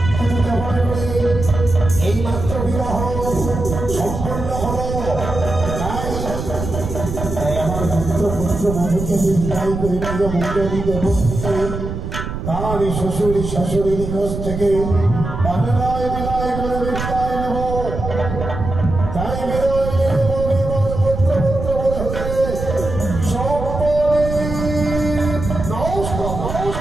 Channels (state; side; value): noise; right; rumble, 6 dB below the sound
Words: এই মাত্র বিবাহ সম্পন্ন হল। তাই আমার পুত্র পুত্র বধূকে বিদায় করে নিজ মন্ডলী দেব তার শ্বশুর শাশুড়ির নিকট থেকে বিদায় বিদায় করে বিদায় নেব। তাই বিদায় নেব পুত্র পুত্র বধূকে